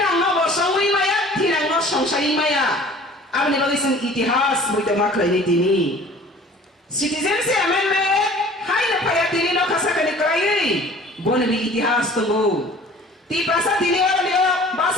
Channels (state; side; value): normal; both; correlation 0.47